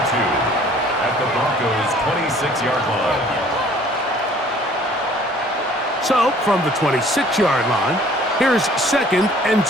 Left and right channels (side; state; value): both; normal; correlation 0.54